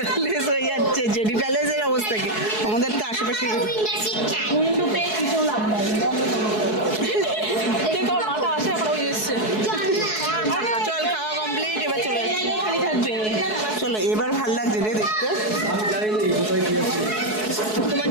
হয়ে যাচ্ছে জেডি প্যালেসের অবস্থা কি আমাদের তো আশেপাশে উইন্ডো পেয়ে কিছু লাভ নাই মাথা আসে এখন ওই এসছে চল খাওয়া কমপ্লিট এবার চলে যাচ্ছি খালি থাকবে চলো এবার ভাল লাগছে রে দেখতে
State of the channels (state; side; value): late; right; 4.7 ms